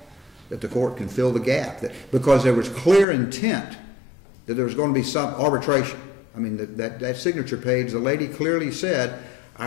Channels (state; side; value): drops out; right; at 3.1 s